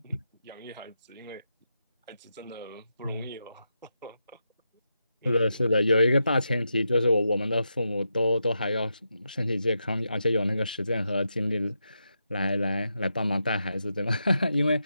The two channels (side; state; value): both; inverted; correlation -0.86